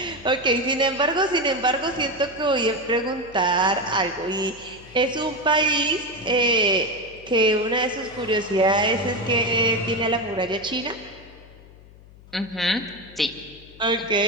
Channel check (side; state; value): left; noise; hum, 22 dB below the sound